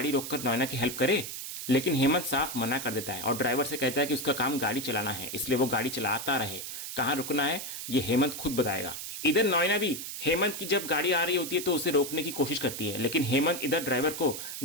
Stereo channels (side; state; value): right; noise; hiss, 7 dB below the sound